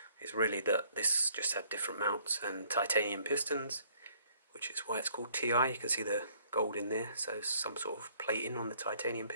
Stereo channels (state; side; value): inverted; both; correlation -0.62